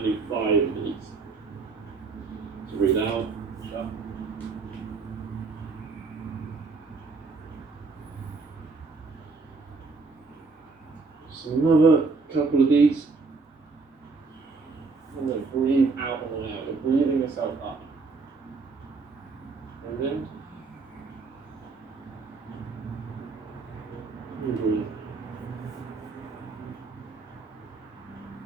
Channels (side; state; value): left; quieter; 4.3 dB